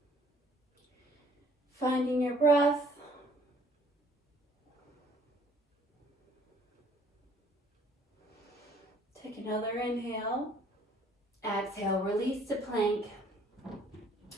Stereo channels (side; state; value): both; normal; correlation 0.59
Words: Finding your breath. Take another inhale. Exhale, release to plank